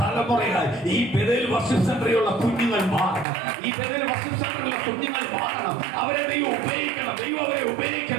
തലമുറയായി ഈ ബെഥേൽ വർഷിപ്പ് സെന്ററിലുള്ള കുഞ്ഞുങ്ങൾ മാറണം. ഈ ബെഥേൽ വർഷിപ്പ് സെന്ററിലുള്ള കുഞ്ഞുങ്ങൾ മാറണം. അവരെ ദൈവം ഉപയോഗിക്കണം. ദൈവം അവരെ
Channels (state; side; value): drops out; left; at 3.2 s